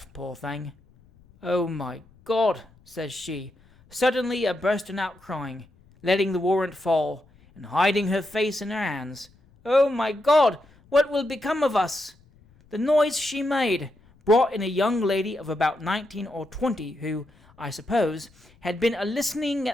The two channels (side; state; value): left; noise; rumble, 29 dB below the sound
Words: poor thing. "Oh, my God," says she, suddenly a-bursting out crying, letting the warrant fall, and hiding her face in her hands. "Oh, my God, what will become of us?" The noise she made brought in a young lady of about 19 or 20, who, I suppose, had been a-listening